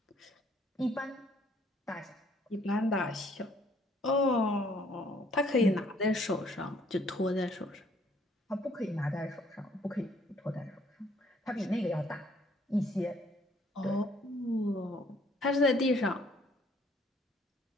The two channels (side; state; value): both; normal; correlation 0.63